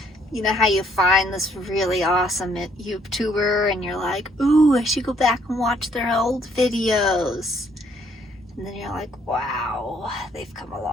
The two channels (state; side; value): normal; both; correlation 0.66